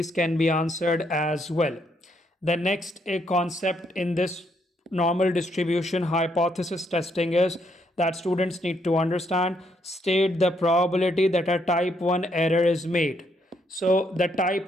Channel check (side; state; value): both; normal; correlation 0.73